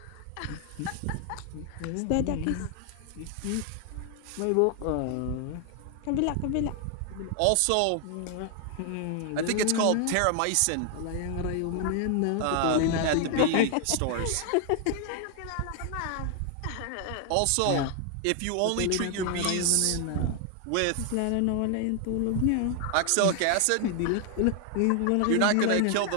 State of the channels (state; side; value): different; both; correlation 0.00